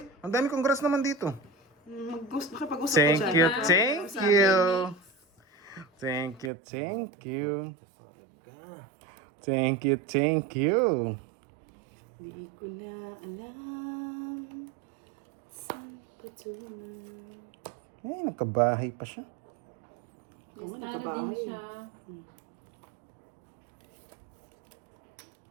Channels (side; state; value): left; drops out; at 6.5 s